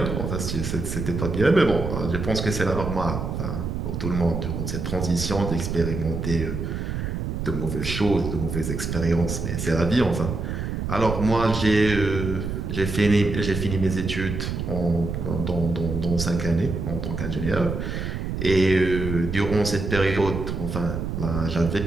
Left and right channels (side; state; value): right; noise; rumble, 4 dB below the sound